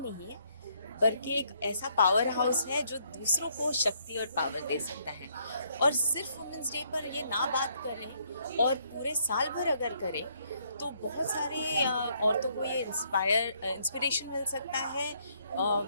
है, बल्कि एक ऐसा पावर हाउस है जो दूसरों को शक्ति और पावर दे सकता है. और सिर्फ वुमेन्स डे पर ये ना बात करें और पूरे साल भर अगर करें तो बहुत सारे औरतों को ये इंस्पिरेशन मिल सकता है,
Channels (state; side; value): inverted; both; correlation -0.70